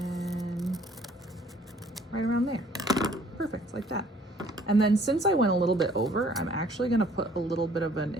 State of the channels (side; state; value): both; normal; correlation 0.58